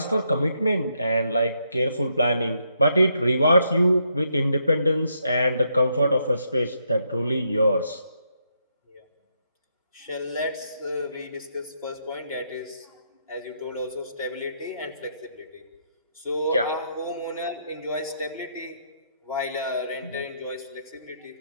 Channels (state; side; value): inverted; both; correlation -0.77